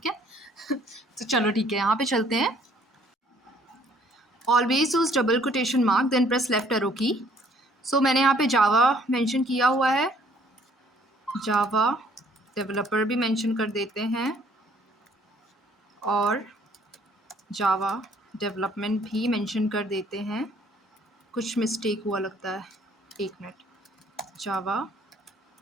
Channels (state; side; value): normal; both; correlation 0.61